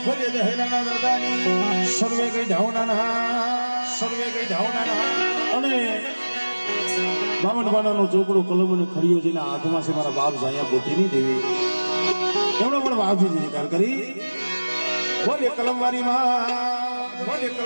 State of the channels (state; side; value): inverted; both; correlation -1.00